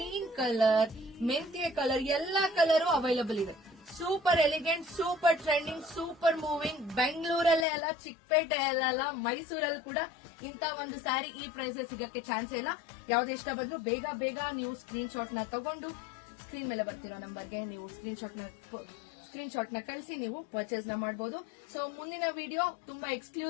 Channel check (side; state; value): right; drops out; at 7.7 s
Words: colour, ಮೆಂತ್ಯ ಕಲರ್, ಎಲ್ಲಾ ಕಲರ್ ಅವೈಲಬಲ್ ಇದೆ. Super elegant, super trending, super moving. ಬೆಂಗಳೂರಲ್ಲೇ ಅಲ್ಲ, ಚಿಕ್ಕಪೇಟೆಯಲ್ಲ, ಮೈಸೂರಲ್ಲಿ ಕೂಡ ಇಂತ ಒಂದು ಸ್ಯಾರಿ ಈ ಪ್ರೈಸ್ ಸಿಗಕ್ಕೆ ಚಾನ್ಸ್ ಇಲ್ಲ. ಯಾವ್ದು ಇಷ್ಟ ಬಂದ್ರು ಬೇಗ ನೀವು ಸ್ಕ್ರೀನ್ ಶಾಟ್ ನ ತಗೊಂಡು ಸ್ಕ್ರೀನ್ ಮೇಲೆ ಬರ್ತಿರೋ ನಂಬರ್ಗೆ ನೀವು ಸ್ಕ್ರೀನ್ ಶಾಟ್ ನ ಕಳಿಸಿ ನೀವು ಪರ್ಚೇಸ್ ನ ಮಾಡಬಹುದು. ಸೊ ಮುಂದಿನ ವಿಡಿಯೋ ತುಂಬಾ